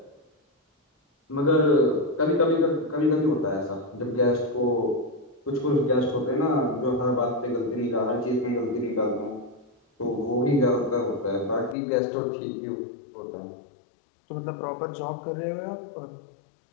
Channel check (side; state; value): right; drops out; at 11.8 s